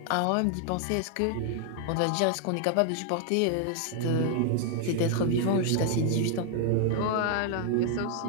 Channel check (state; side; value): different; both; correlation 0.00